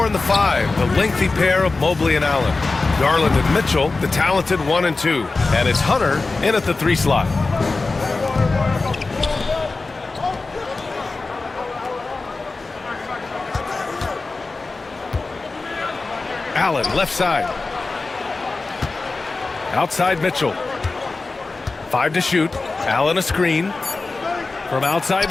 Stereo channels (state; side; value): quieter; right; 3.7 dB